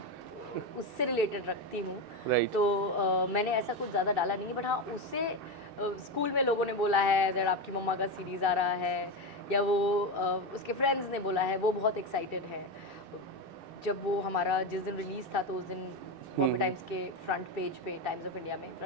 उससे रिलेटेड रखती हूँ। Right. तो मैंने ऐसा कुछ ज़्यादा डाला नहीं है, बट हाँ उससे स्कूल में लोगों ने बोला है दैट आपकी मम्मा का सीरीज़ आ रहा है, या वो उसके फ्रेंड्स ने बोला है, वो बहुत एक्साइटेड है। जब वो हमारा जिस दिन रिलीज़ था तो उस दिन बॉम्बे टाइम्स के फ्रंट पेज पे, टाइम्स ऑफ इंडिया में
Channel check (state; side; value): late; left; 2.6 ms